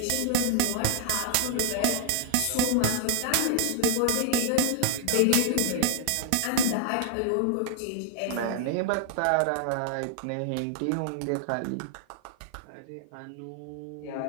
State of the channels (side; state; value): both; different; correlation 0.00